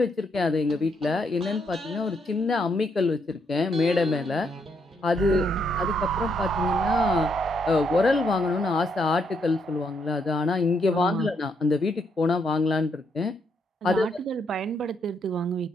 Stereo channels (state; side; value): normal; both; correlation 0.76